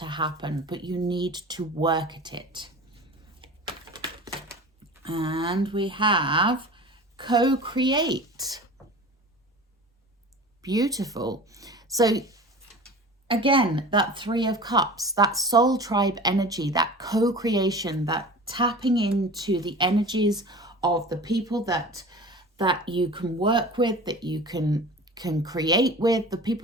happen, but you need to work at it. And we have co-create. Beautiful. So again, that 3 of Cups, that soul tribe energy, that co-creation, that tapping into the energies of the people that you can work with, that you can create with, the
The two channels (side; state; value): both; normal; correlation 0.37